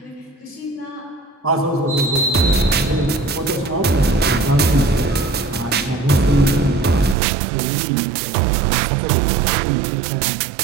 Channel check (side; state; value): left; drops out; at 7.2 s